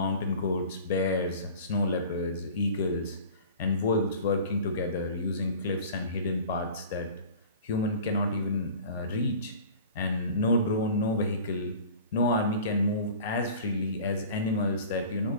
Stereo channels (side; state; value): both; inverted; correlation -0.41